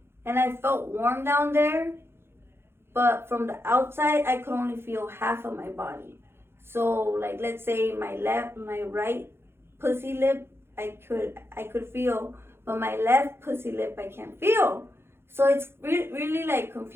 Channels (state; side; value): late; left; 0.11 ms